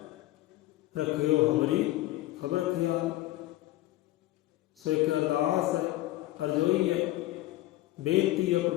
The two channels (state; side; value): quieter; right; 16.3 dB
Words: रखियो हमारी खबर ख्याल। सो एक अरदास है, अरजोई है, बेनती है